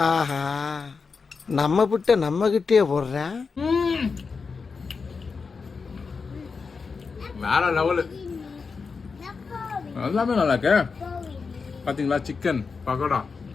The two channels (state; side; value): quieter; right; 5.0 dB